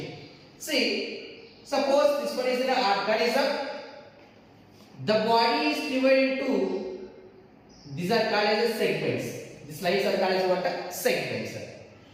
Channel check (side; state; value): both; identical; correlation 1.00